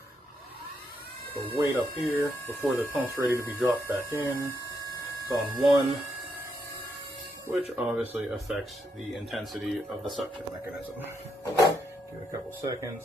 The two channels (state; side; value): normal; both; correlation 0.79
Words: or wait up here before the pump's ready to be dropped back in. It's on 1, which obviously affects the intensity of the suction mechanism. Give it a couple